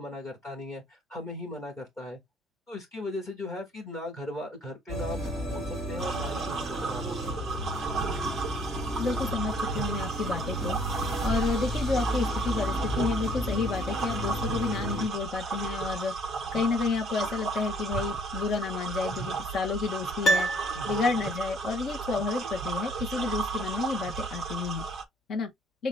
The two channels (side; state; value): both; normal; correlation 0.61